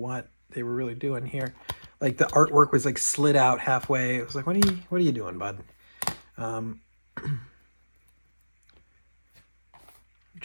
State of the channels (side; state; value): both; inverted; correlation -1.00